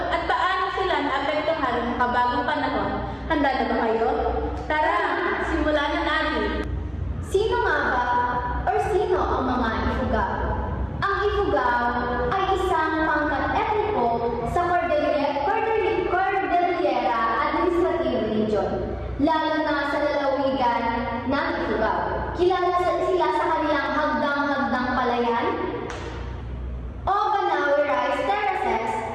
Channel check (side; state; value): both; identical; correlation 1.00